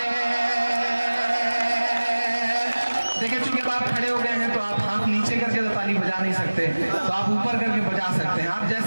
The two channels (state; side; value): inverted; both; correlation -1.00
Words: देखिए चूंकि आप खड़े हो गए हैं तो आप हाथ नीचे करके तो ताली बजा नहीं सकते, तो आप ऊपर करके बजा सकते हैं। आप